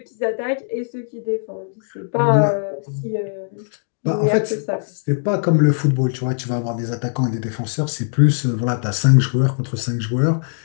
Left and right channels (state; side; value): silent; right; 61 dB below the other